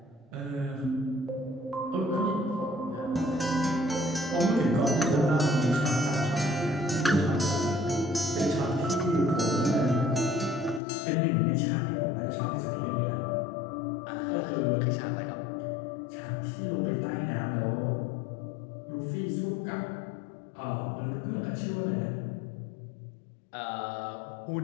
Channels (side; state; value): right; drops out; at 10.8 s